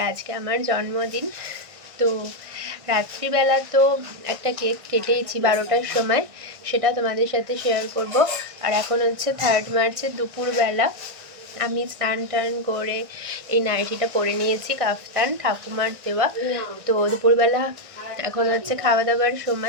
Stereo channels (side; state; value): left; late; 1.6 ms